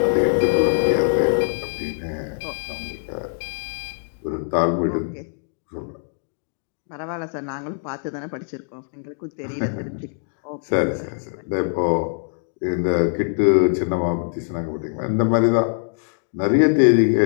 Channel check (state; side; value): silent; right; digital silence